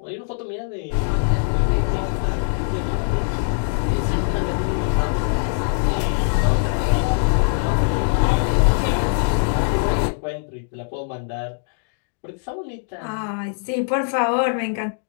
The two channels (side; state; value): right; silent; digital silence